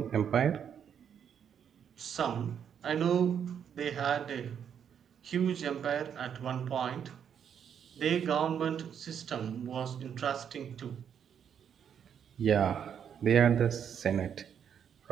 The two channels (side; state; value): left; quieter; 8.3 dB